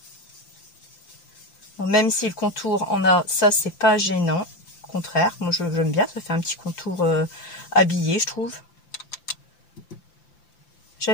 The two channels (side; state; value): right; late; 5.8 ms